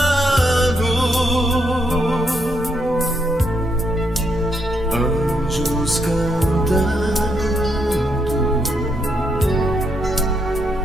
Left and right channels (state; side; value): normal; both; correlation 0.77